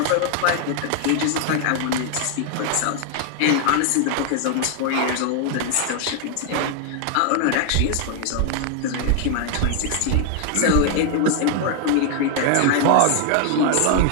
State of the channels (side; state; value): both; different; correlation 0.00